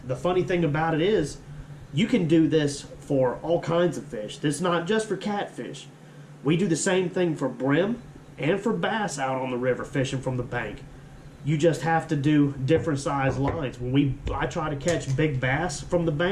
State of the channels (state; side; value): identical; both; correlation 1.00